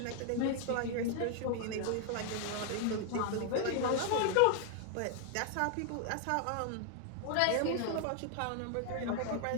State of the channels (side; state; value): both; different; correlation 0.00